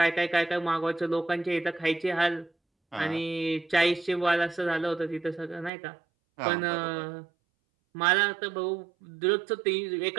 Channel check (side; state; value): left; drops out; at 5.7 s